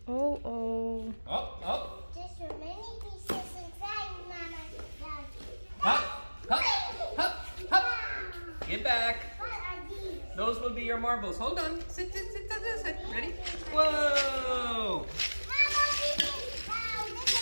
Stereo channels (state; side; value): inverted; both; correlation -1.00